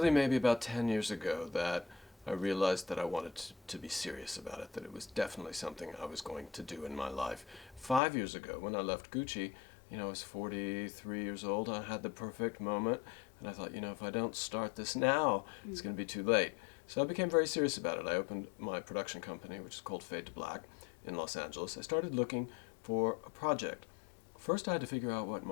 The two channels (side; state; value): right; drops out; at 8.0 s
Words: maybe about 10 years ago that I realized that I wanted to be serious about it, that it was definitely something I was going to do in my life. 5 years ago, when I left Gucci, I was 43 years old. I had the perfect moment, and I thought, if I don't start this now, it's going to be too late. So I became very serious about it. I opened my production company, which is called Fade to Black, in Los Angeles. I started looking for a project. First, I had to figure out what